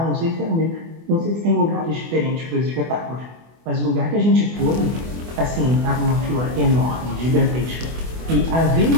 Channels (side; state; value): left; late; 24 ms